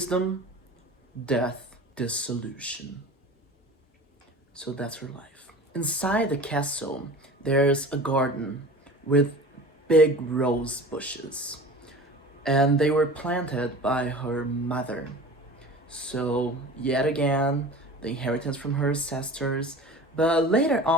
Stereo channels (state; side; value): normal; both; correlation 0.38